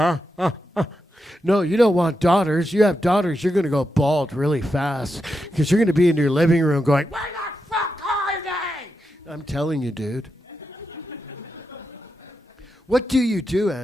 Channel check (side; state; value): both; normal; correlation 0.87